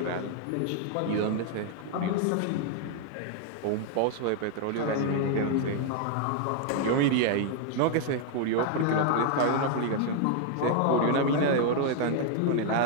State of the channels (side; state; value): both; different; correlation 0.00